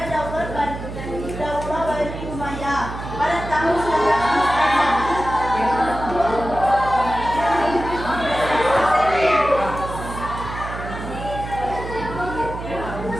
Daulah Bani Umayyah pada tahun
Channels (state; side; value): noise; right; hum, 9 dB below the sound